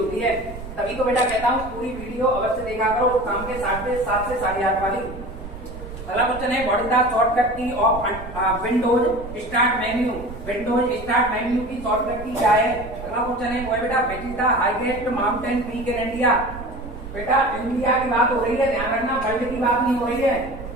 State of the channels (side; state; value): right; noise; rumble, 12 dB below the sound